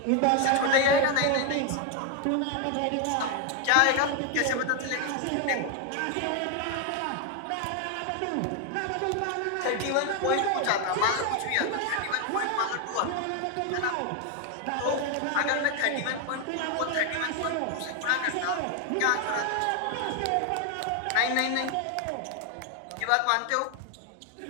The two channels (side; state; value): both; different; correlation 0.01